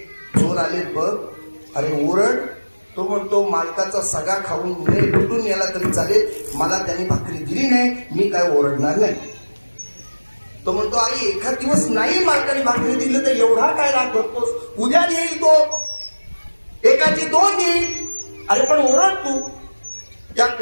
चोर आले बघ, अरे ओरड. तो म्हणतो, मालकाचा सगळा खाऊन लुटून याला तरी चालेल, मला त्याने भाकरी दिली नाही, मी काय ओरडणार नाही. तो म्हणतो, अरे एखाद दिवस नाही मालकाने भाकरी दिली तर एवढा काय राग धरतोस, उद्या देईल तो, एकाची 2 देईल, अरे पण ओरड तू. त्या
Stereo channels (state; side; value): inverted; both; correlation -1.00